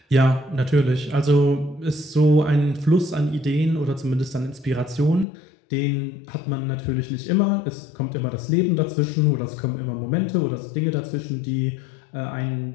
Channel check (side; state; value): right; drops out; at 5.2 s